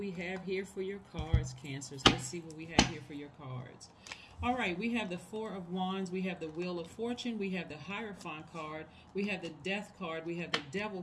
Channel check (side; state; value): both; identical; correlation 1.00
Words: have here for your cards, Cancers. Let's see what we have here for your cards. All right, we have the Four of Wands, we have the Wheel of Fortune, we have the Hierophant card, we have the Death card, we have the